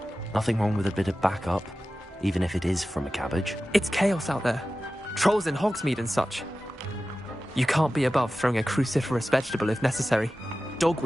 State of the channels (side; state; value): both; normal; correlation 0.95